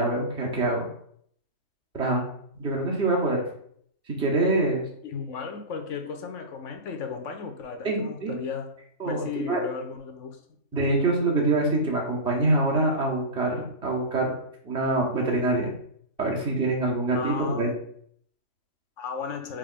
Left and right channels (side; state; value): right; late; 3.6 ms